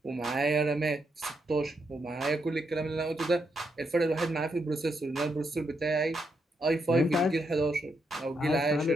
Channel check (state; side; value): normal; both; correlation 0.80